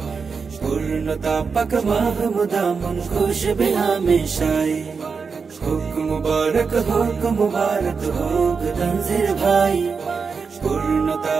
পূর্ণতা পাক মাহমুদা মন খুশ भी हमेशाई। হোক মুবারক হোক তনজির ভাই, পূর্ণতা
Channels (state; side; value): quieter; left; 5.3 dB